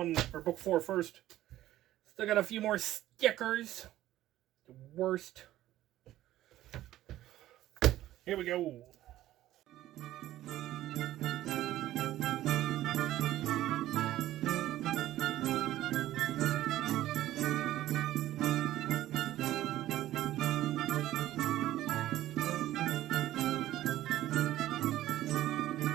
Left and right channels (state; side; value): quieter; left; 14.3 dB